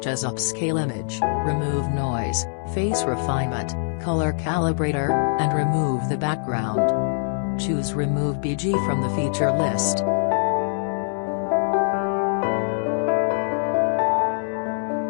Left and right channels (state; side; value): silent; right; 63 dB below the other